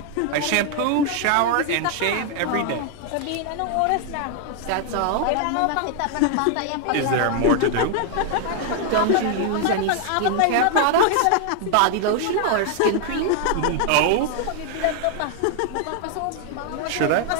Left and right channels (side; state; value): both; different; correlation 0.00